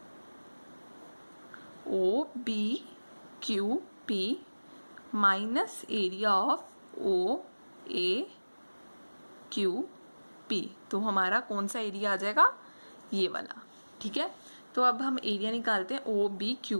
O B Q P minus area of O A Q P, तो हमारा कौन सा एरिया आ जाएगा ये वाला, ठीक है। तो अब हम एरिया निकालते हैं ओ बी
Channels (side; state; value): both; inverted; correlation -1.00